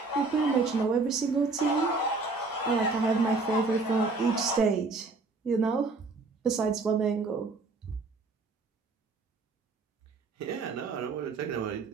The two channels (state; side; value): quieter; left; 3.8 dB